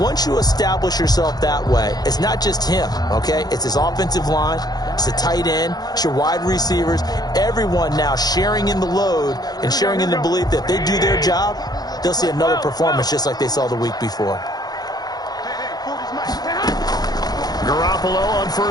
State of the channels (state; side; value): late; right; 0.19 ms